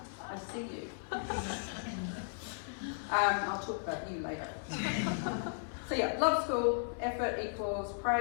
see you. I'll talk about you later. So yeah, love school, effort equals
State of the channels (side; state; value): right; silent; 54 dB below the other